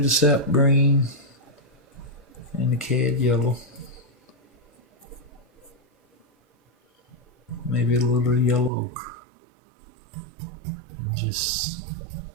sap green and the cad yellow. Maybe a little yellow ochre. And just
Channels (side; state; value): left; drops out; at 8.7 s